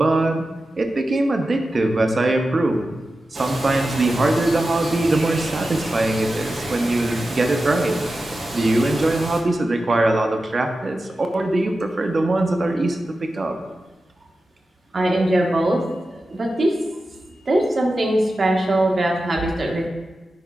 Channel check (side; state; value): both; normal; correlation 0.93